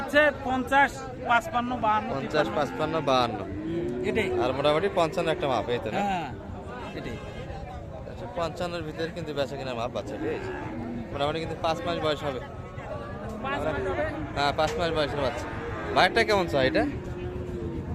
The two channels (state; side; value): identical; both; correlation 1.00